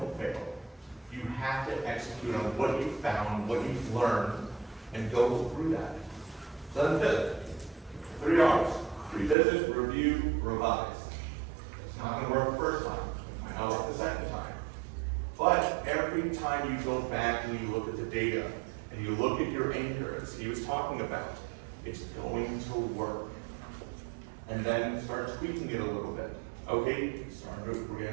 fail? You have to execute on what you found, what you've learned, and go through that. So then 5th, 3 R's. Revisit, review, revise. It's not going to work the first time. It might not work the second time. But every time you go back and you look at the data and you look at your anchor, as he was talking about, it's going to work. And then start tweaking it a little bit. Okay, we're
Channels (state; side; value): drops out; left; at 9.3 s